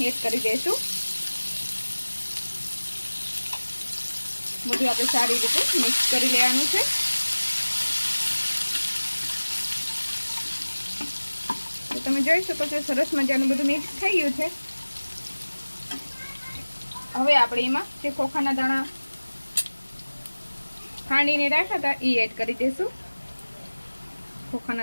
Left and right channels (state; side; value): inverted; both; correlation -1.00